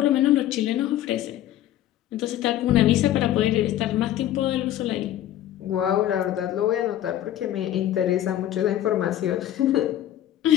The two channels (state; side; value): quieter; right; 12.5 dB